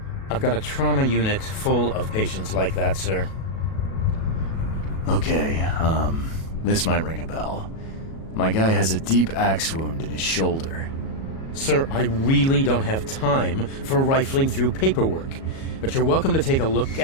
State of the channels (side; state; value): right; late; 37 ms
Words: I've got a trauma unit full of patients like that, sir. Okay, this might ring a bell. My guy has a deep axe wound in his shoulder. Sir, I really don't have time for rifling through paperwork, but you're welcome to take a look